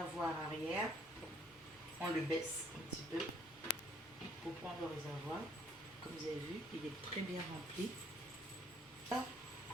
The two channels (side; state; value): both; normal; correlation 0.62